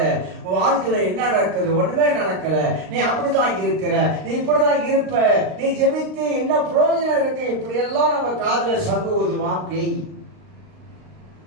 வாழ்க்கையில என்ன நடக்குது, ஒண்ணுமே நடக்கல, நீ அப்படிதான் இருக்கிற, நீ இப்படிதான் இருப்ப, நீ ஜெபித்து என்ன பிரயோஜனம் இருக்கு, இப்படி எல்லாம் நம்ம காதுல சங்கு ஊதுவான் பேய்.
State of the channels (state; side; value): late; left; 38 ms